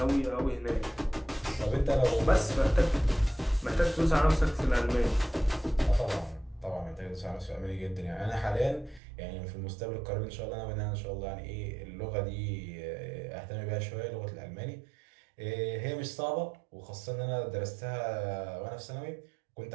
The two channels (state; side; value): drops out; left; at 9.0 s